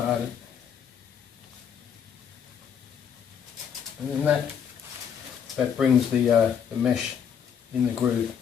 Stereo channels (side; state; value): right; quieter; 7.8 dB